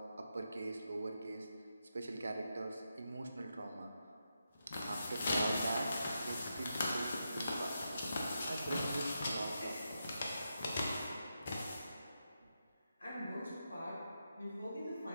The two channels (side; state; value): both; inverted; correlation -0.86